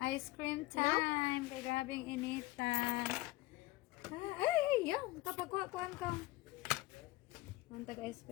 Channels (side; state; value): right; quieter; 19.5 dB